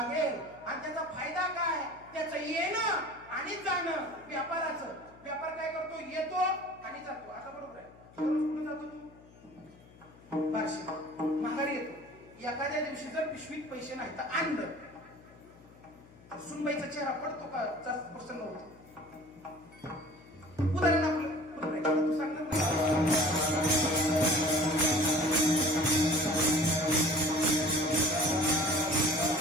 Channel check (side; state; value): left; noise; hum, 24 dB below the sound